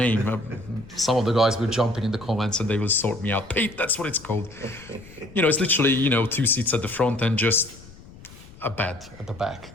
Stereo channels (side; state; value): left; noise; rumble, 20 dB below the sound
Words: Some of the guys will jump in the comments and they will sort me out. Pete, that's what it's called. It's literally, 2 seats at the front and just a bed at the back,